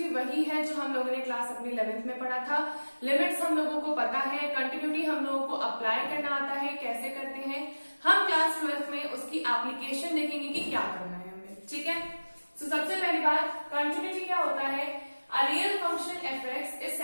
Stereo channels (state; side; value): inverted; both; correlation -1.00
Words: वही है जो हम लोगों ने क्लास अपनी 11th में पढ़ा था। लिमिट्स हम लोगों को पता है, कंटिन्यूटी हम लोगों को अप्लाई करना आता है, कैसे करते हैं। हम क्लास 12th में उसकी एप्लीकेशन देखेंगे कि क्या करना है हमें, ठीक है। तो सबसे पहली बात, कंटिन्यूटी क्या होता है? A real function f(x) is